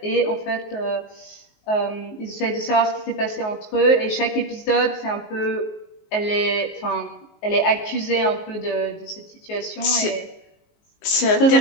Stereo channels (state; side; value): late; right; 19 ms